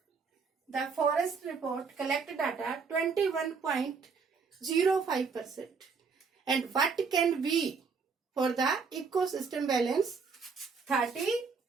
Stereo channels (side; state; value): left; quieter; 5.3 dB